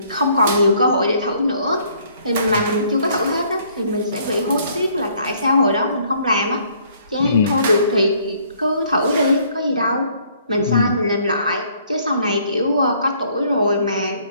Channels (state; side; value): inverted; both; correlation -0.63